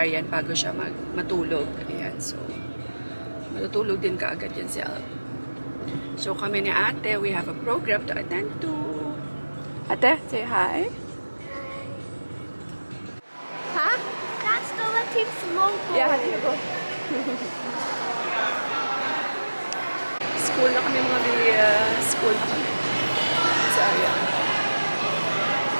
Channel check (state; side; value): inverted; both; correlation -1.00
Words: bago siya matulog. Ayan, so, matutulog din kaagad yan si Alp. So, kami ni ate, we have a program to attend to. Ate, say hi. Ha? That's the Latif Simone. Yeah, here you go. School na kami mga school na kami. Sa Aryan.